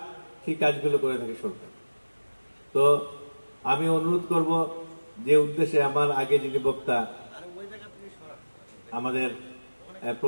সেই কাজগুলো করে থাকে সরকার। তো আমি অনুরোধ করব, যে উদ্দেশ্যে আমার আগে যিনি বক্তা আমাদের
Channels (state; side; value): inverted; both; correlation -1.00